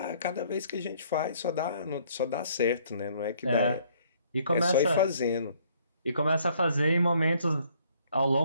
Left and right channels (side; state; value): both; inverted; correlation -0.63